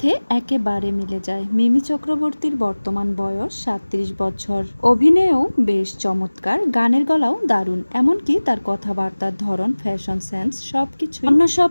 একেবারে মিলে যায়। মিমি চক্রবর্তীর বর্তমান বয়স 37 বছর। অভিনয়েও বেশ চমৎকার, গানের গলাও দারুণ, এমনকি তার কথাবার্তার ধরন, ফ্যাশন সেন্স সবকিছু অন্য সব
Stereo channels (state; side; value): inverted; both; correlation -1.00